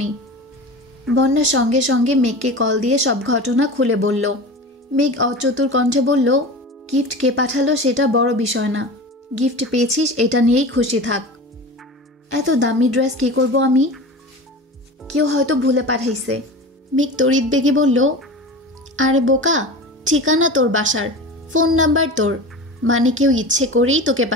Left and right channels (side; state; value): both; normal; correlation 0.32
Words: বন্যা সঙ্গে সঙ্গে মেঘকে কল দিয়ে সব ঘটনা খুলে বলল। মেঘ অচতুর কণ্ঠে বলল, গিফট কে পাঠালো সেটা বড় বিষয় না, গিফট পেয়েছিস এটা নিয়েই খুশি থাক। এত দামি ড্রেস কি করব আমি? কেউ হয়তো ভুলে পাঠাইছে। মেঘ তড়িৎ বেগে বলল, আরে বোকা, ঠিকানা তোর বাসার, ফোন নাম্বার তোর, মানে কেউ ইচ্ছে করেই তোকে